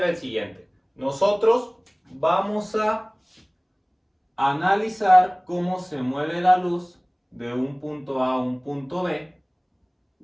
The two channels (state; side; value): identical; both; correlation 1.00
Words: el siguiente. Nosotros vamos a analizar cómo se mueve la luz de un punto A a un punto B.